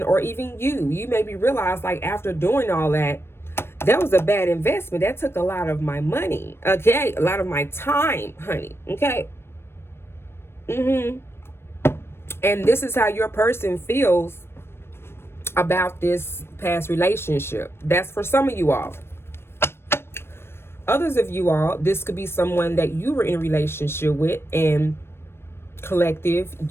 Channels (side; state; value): right; late; 0.12 ms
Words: or even you may be realized, like, after doing all that, that was a bad investment. That took a lot of my money. Okay. A lot of my time, honey. Okay. And this is how your person feels about this past relationship. That's for some of you all. Others of you all, this could be someone that you were in a relationship with, and collective,